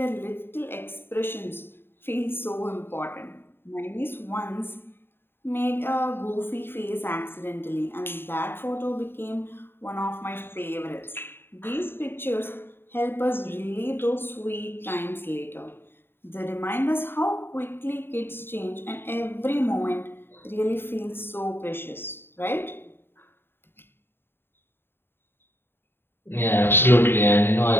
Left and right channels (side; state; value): right; late; 0.11 ms